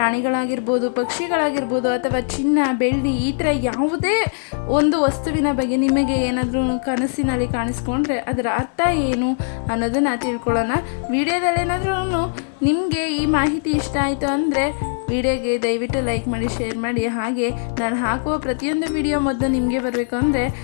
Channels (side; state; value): right; silent; digital silence